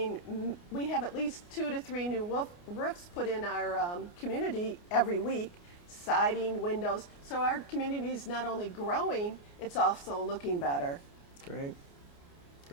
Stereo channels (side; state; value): right; late; 29 ms